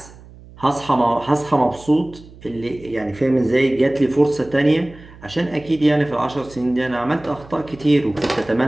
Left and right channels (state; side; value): noise; right; hum, 21 dB below the sound